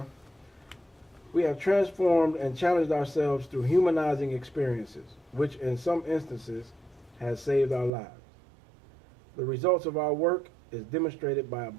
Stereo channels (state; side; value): drops out; left; at 7.9 s